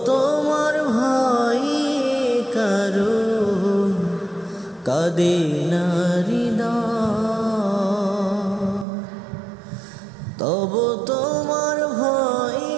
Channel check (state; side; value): drops out; left; at 8.8 s